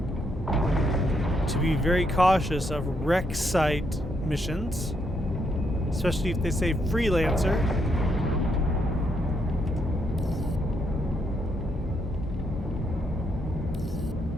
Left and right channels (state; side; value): normal; both; correlation 0.76